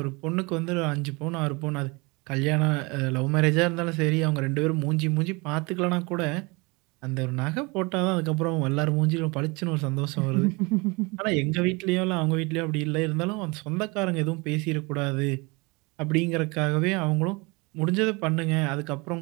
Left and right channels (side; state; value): left; quieter; 27.0 dB